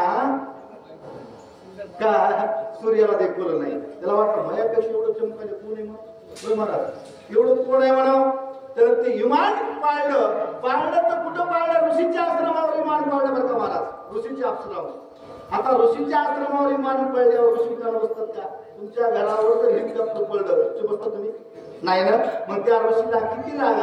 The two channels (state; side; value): identical; both; correlation 1.00